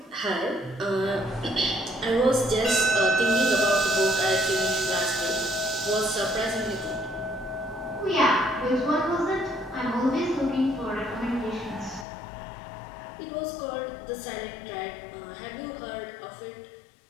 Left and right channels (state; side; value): drops out; right; at 12.1 s